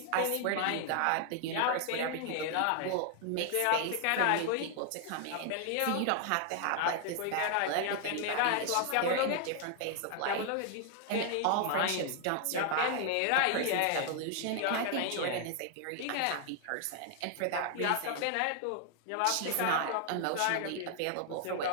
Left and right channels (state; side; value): different; both; correlation 0.00